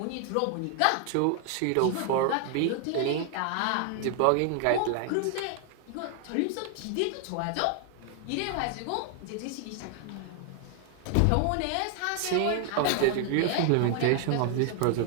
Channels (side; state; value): both; different; correlation 0.00